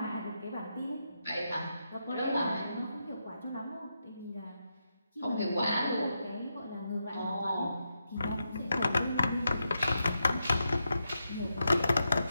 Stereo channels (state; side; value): inverted; both; correlation -0.85